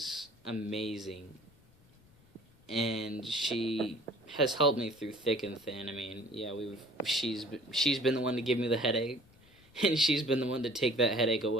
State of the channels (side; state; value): left; noise; rumble, 29 dB below the sound